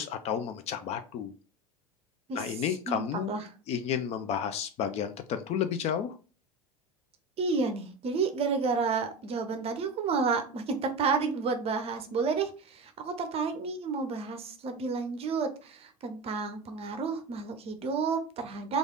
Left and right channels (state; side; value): normal; both; correlation 0.24